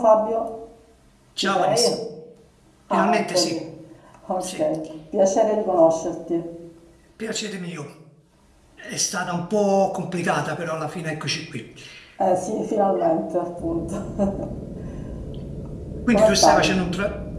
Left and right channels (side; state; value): both; identical; correlation 1.00